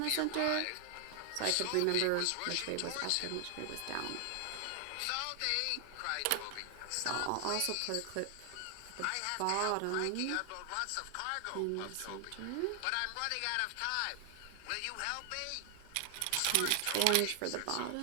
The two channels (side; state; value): both; different; correlation 0.00